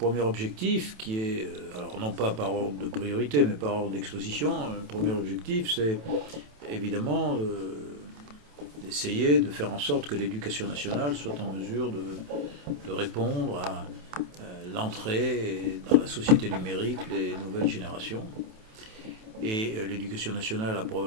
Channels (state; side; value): late; left; 27 ms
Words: objectif qui est, alors non pas par ordre de priorité, mais par ordre d'exposition. Le premier objectif, c'est évidemment d'essayer de faire en sorte que l'éducation nationale soit en mesure de répondre à l'entrée dans la société numérique des nouvelles générations. Et l'éducation nationale a